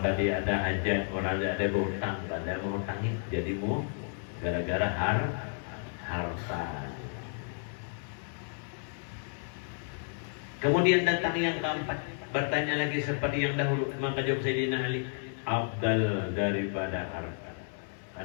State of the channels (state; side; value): silent; right; 57 dB below the other